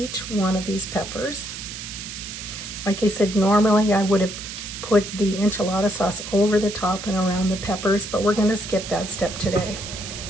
one of these peppers. Like I said, normally I would have put the enchilada sauce over the top and around the peppers, but we're going to skip that step today.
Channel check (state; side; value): noise; right; hiss, 9 dB below the sound